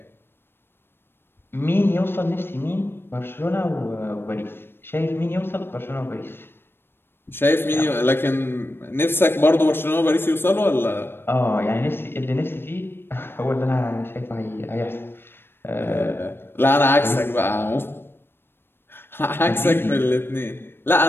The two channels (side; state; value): right; late; 0.10 ms